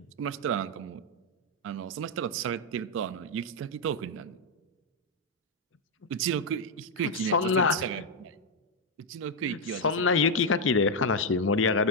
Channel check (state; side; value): normal; both; correlation 0.01